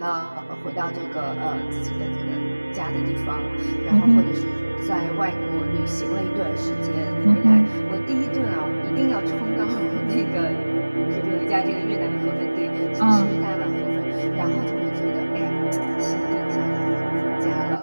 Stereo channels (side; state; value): both; inverted; correlation -1.00